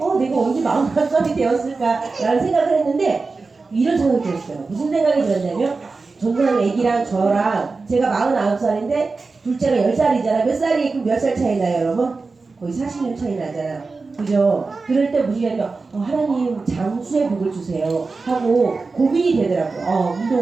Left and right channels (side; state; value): left; quieter; 4.0 dB